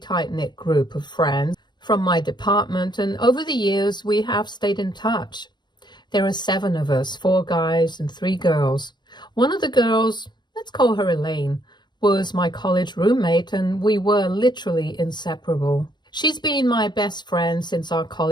group of friends from my department, and over the years we have stayed in touch. There are 7 of us, 4 guys and 3 girls. One of the girls, let's call her Elaine, was my college roommate, and we were literally inseparable. She's been my best friend since our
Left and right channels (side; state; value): right; late; 0.21 ms